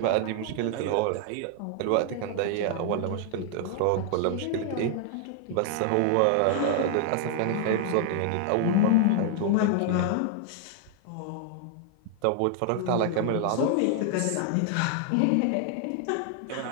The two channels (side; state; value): both; different; correlation 0.00